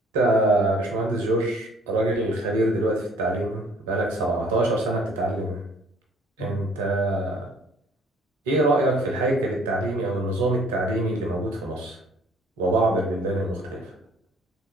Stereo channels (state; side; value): normal; both; correlation 0.57